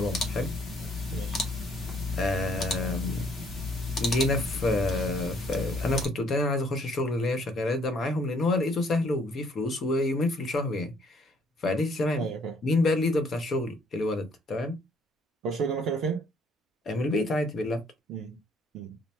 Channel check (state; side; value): normal; both; correlation 0.64